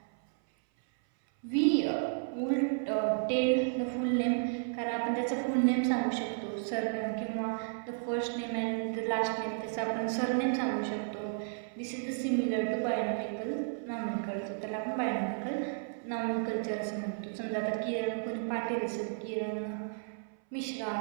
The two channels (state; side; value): silent; left; 56 dB below the other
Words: We will tell the full name, कारण आपण त्याचं फुल नेम सांगू शकतो, सरनेम किंवा the first name and the last name, त्याचं आपण सरनेम सांगू शकतो. This is the similar to binomial nomenclature. त्याला आपण बायोनॉमिकल नॉमेनक्लेचर असं म्हणतो. समजा आता किरण कोणी पाटील असेल, किरण मिश्रा,